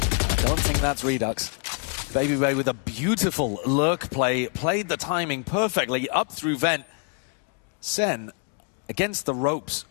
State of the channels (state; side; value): quieter; right; 36.7 dB